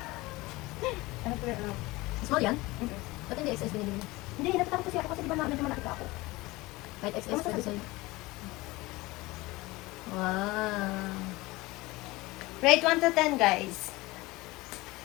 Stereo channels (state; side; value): quieter; right; 21.1 dB